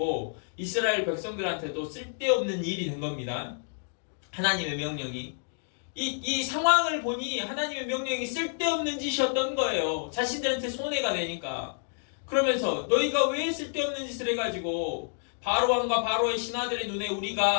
이스라엘 백성들한테도 쓸데없는 일이 된 겁니다. 하나님의 명령이. 이 상황을 보니 하나님의 명령이 쓸데없는 짓이었던 거예요. 자신들한테 손해가 되니까. 그러면서 너희가 왜 쓸데없는 짓을 해가지고 바로왕과 바로의 신하들의 눈에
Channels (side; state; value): right; silent; digital silence